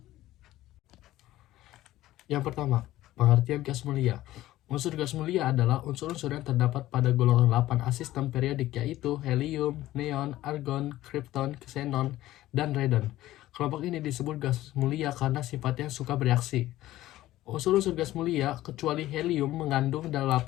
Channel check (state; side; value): quieter; right; 15.4 dB